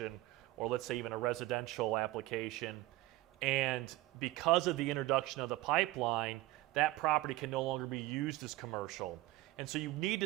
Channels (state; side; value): quieter; left; 18.0 dB